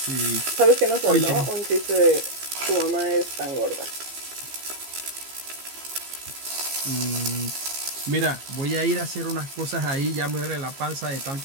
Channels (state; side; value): late; left; 15 ms